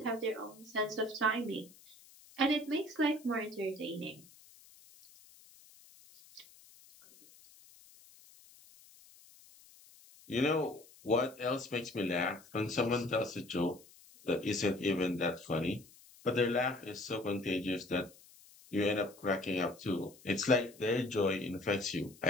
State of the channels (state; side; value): noise; left; hiss, 24 dB below the sound